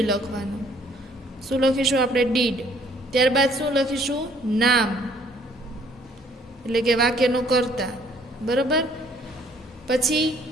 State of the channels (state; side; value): normal; both; correlation 0.61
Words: લખવાનું. શું લખીશું આપણે? ડીડ. ત્યારબાદ શું લખીશું? નામ, એટલે કે વાક્યનું કર્તા, બરાબર. પછી